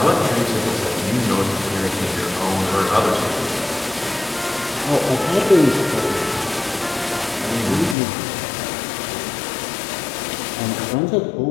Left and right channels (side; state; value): right; drops out; at 8.0 s